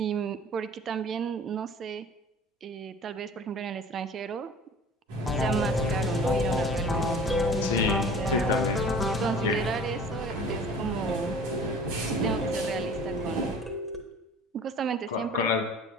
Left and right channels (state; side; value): normal; both; correlation 0.44